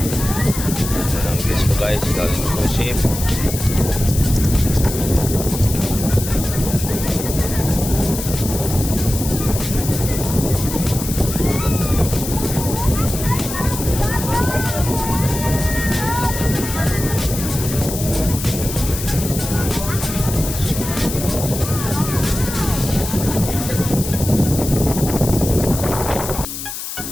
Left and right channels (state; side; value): noise; left; hiss, 7 dB below the sound